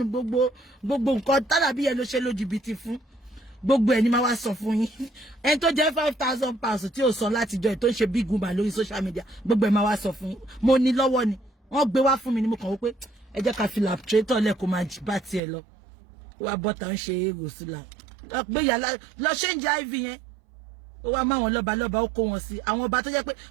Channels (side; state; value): left; drops out; at 15.4 s